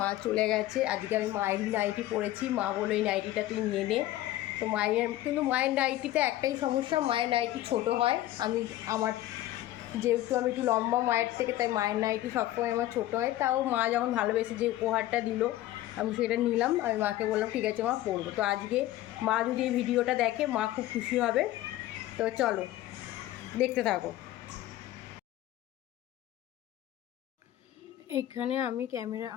চলে গেছে। আজকে আমি মায়েরই নাইটি পরেছি, মা বলো এই নাইটিটা তুই নিয়ে নে। তো কিন্তু মায়ের নাইটিতে একটাই সমস্যা, মায়ের নাইটি ছোট হয়। যেহেতু আমি একটু লম্বা মায়ের থেকে, তাই মায়ের নাইটি সবসময় আমার ছোটো হয়। তাও মা যখন ভালোবেসে যে উপহারটা দিল, আমি সেটা নিলাম। আমি মাকে বললাম ঠিক আছে মা, পরবো। তো আজকে মা যদি এই ভিডিওটা দেখে, মা খুব খুশি হবে। তো চলো দেখতে থাকো। এখানে আমি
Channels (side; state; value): right; quieter; 14.8 dB